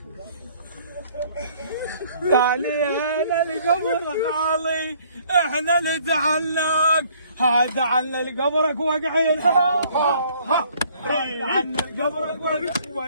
تاليها للقبر خالي احنا نتعناك، هذا عن قبرك وقعين عن قبرك وقع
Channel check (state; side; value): inverted; both; correlation -0.60